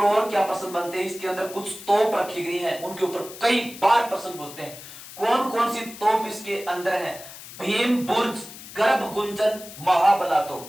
क्या प्रश्न बनते हैं। इसके अंदर कुछ तोप रखी गई है, उनके ऊपर कई बार प्रश्न पूछते हैं। कौन कौन सी तोप इसके अंदर है? भीम बुर्ज, गर्भ गुंजन, महाबला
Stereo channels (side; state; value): left; noise; hiss, 15 dB below the sound